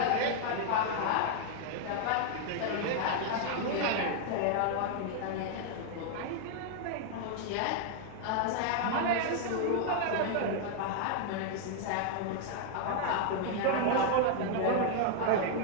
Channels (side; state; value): both; different; correlation 0.00